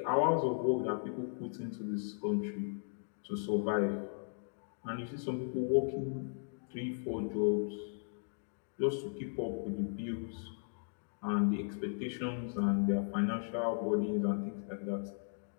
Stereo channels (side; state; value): right; silent; digital silence